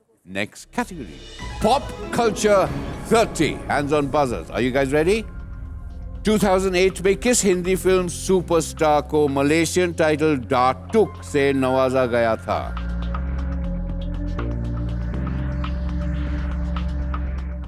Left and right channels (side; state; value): both; identical; correlation 1.00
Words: next category. Pop Culture 30. Hands on buzzers. Are you guys ready? 2008 में किस Hindi film superstar को Malaysian title डाटुक से नवाजा गया था?